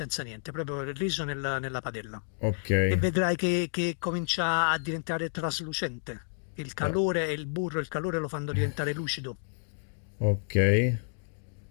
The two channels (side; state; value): right; silent; digital silence